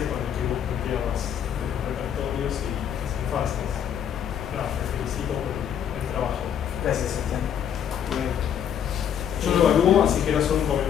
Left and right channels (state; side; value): quieter; right; 8.9 dB